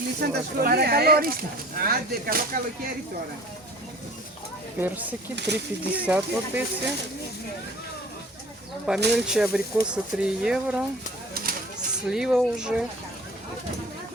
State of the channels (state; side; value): normal; both; correlation 0.46